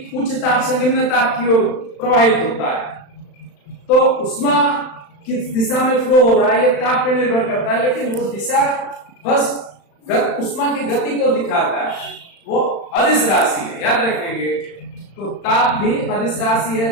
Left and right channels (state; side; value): late; right; 35 ms